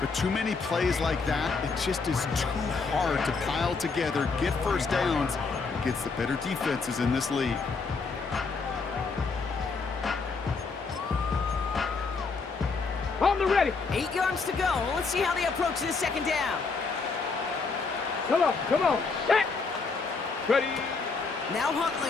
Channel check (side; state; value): right; quieter; 4.5 dB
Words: But too many plays like that, it just is too hard to pile together, get first downs against the better defenses in this league. On the ready. 8 yards to go. Let's see how they approach this second down. Come on. Set. Ready. Now